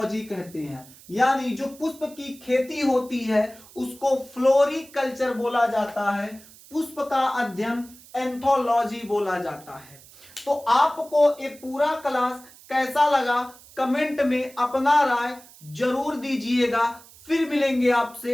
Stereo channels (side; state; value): right; noise; hiss, 22 dB below the sound